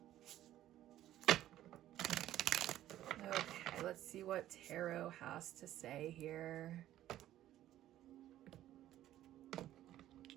Okay, let's see what tarot has to say here.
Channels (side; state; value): left; quieter; 13.2 dB